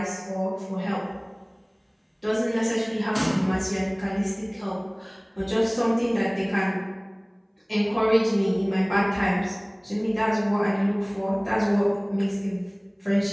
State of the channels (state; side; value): identical; both; correlation 1.00